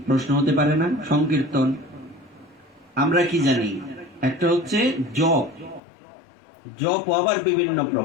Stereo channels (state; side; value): drops out; right; at 5.8 s